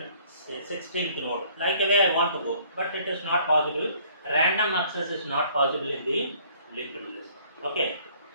16th node. Like the way I want to go, but it is not possible. Random access is not possible in the linked list. Okay.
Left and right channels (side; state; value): both; inverted; correlation -0.59